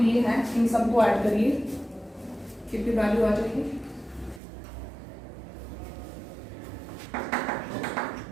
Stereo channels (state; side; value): drops out; left; at 4.4 s